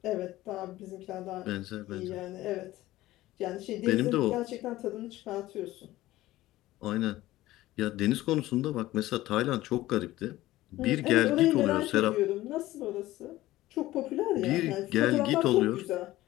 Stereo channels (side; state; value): right; quieter; 16.5 dB